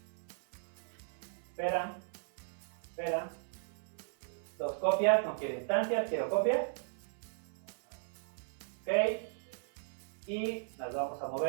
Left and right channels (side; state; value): left; silent; 53 dB below the other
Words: Espera. Dos copias, no quiero instancias, quiero copias. Ok. Y las vamos a